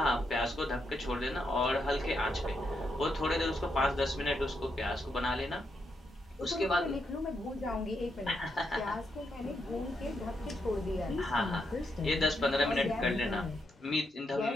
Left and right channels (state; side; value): normal; both; correlation 0.81